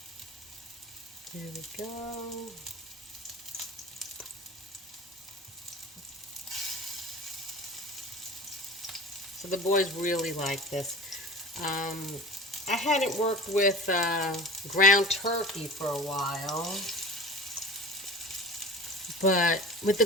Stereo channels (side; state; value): both; normal; correlation 0.36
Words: There we go. So the boys really like this. I hadn't worked with ground turkey for a while, but with the